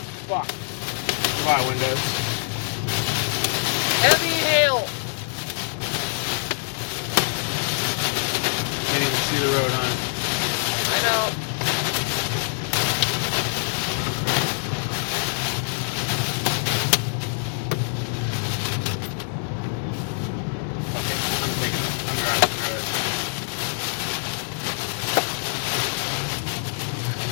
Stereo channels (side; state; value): right; silent; digital silence